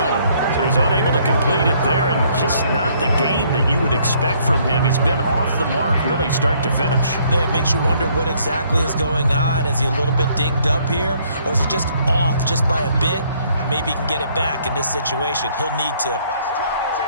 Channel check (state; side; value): inverted; both; correlation -0.65